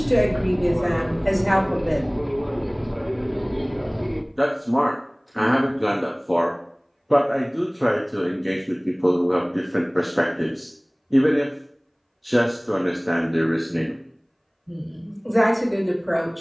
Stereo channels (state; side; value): identical; both; correlation 1.00